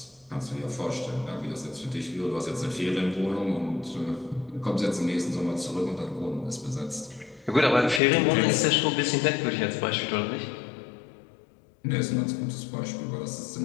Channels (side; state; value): right; drops out; at 8.0 s